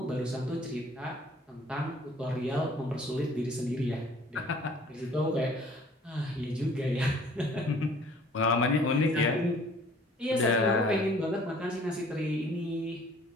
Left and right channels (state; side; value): normal; both; correlation 0.54